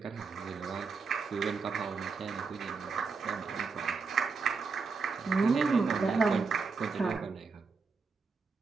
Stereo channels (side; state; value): left; quieter; 4.8 dB